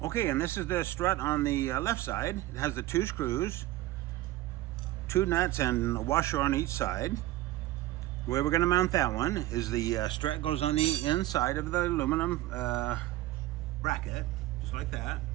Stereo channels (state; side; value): quieter; left; 15.8 dB